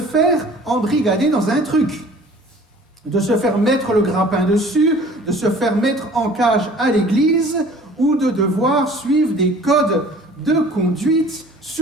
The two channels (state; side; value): normal; both; correlation 0.49